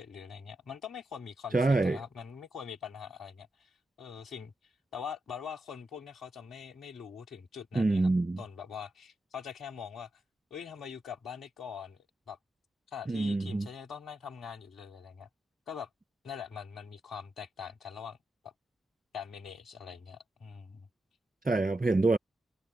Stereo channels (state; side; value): normal; both; correlation 0.87